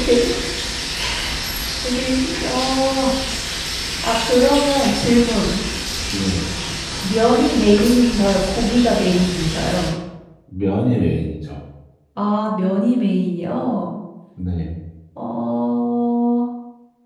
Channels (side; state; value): both; identical; correlation 1.00